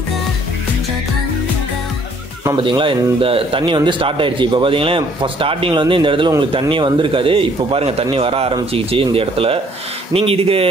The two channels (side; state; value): both; normal; correlation 0.62